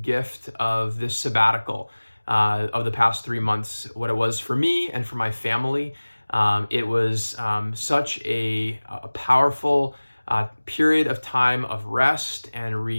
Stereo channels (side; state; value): both; inverted; correlation -1.00